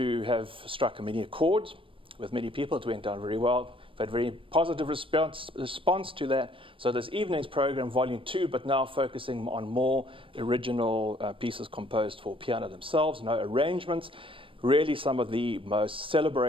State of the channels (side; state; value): left; late; 0.25 ms